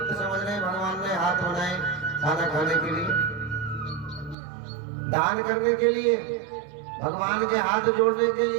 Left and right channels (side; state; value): left; drops out; at 4.4 s